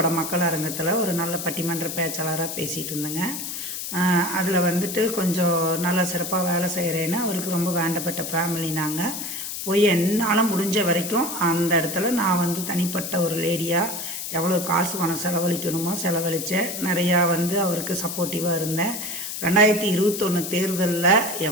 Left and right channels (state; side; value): noise; left; hiss, 6 dB below the sound